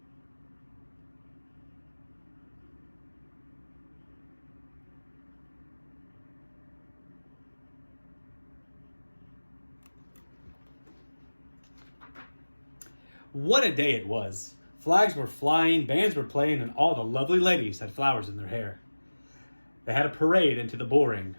What a day it was. Flags were flying, bands were playing, and all the lovely ladies had flowers in their hair. They had a parade into the bull ring.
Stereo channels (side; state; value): both; inverted; correlation -1.00